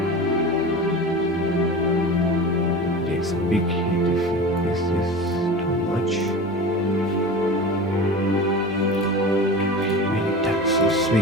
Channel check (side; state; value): both; normal; correlation 0.32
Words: Takes a big hit if Is this too much? Many taxes we